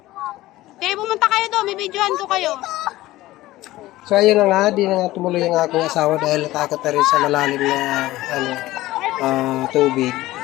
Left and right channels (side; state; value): right; quieter; 16.9 dB